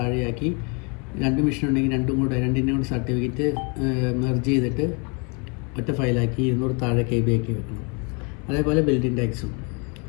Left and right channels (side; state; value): right; quieter; 33.1 dB